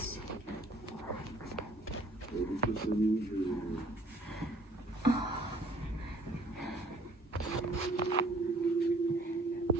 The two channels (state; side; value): normal; both; correlation 0.60